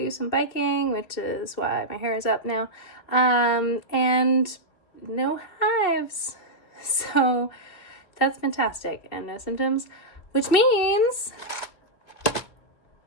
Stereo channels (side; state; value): right; late; 2.9 ms